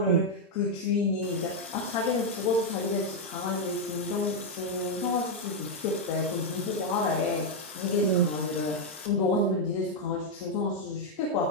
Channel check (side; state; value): both; normal; correlation 0.01